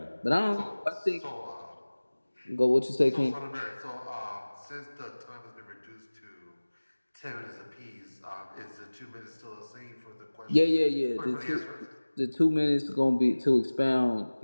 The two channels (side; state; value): both; inverted; correlation -1.00